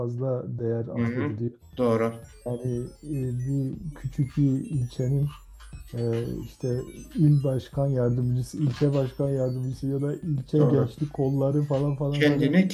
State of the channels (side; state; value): both; identical; correlation 1.00